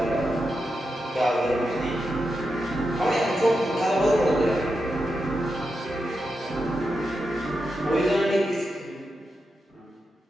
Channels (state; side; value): normal; both; correlation 0.88